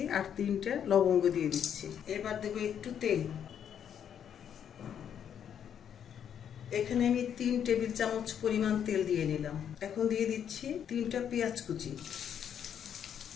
আর 3টা লবঙ্গ দিয়ে দিচ্ছি। এবার দেবো একটু তেল। এখানে আমি 3 টেবিল চামচ পরিমাণ তেল দিয়ে নিলাম। এখন দিয়ে দিচ্ছি 3টা পেঁয়াজ কুচি।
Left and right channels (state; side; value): quieter; right; 8.8 dB